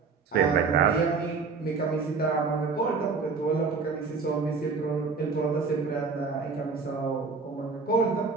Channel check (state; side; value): quieter; left; 4.8 dB